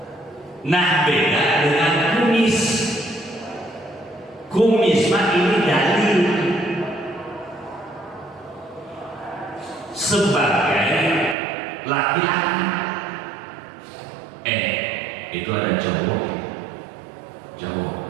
Nah, beda dengan kumis. Kumis mah ini dalil sebagai laki-laki. Itu ada cowok.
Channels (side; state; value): left; drops out; at 11.4 s